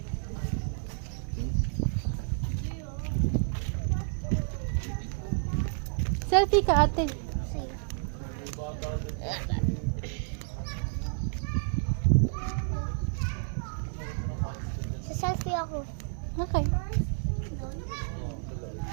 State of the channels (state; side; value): silent; left; 57 dB below the other